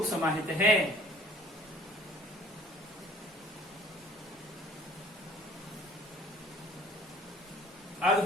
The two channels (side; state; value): both; normal; correlation 0.52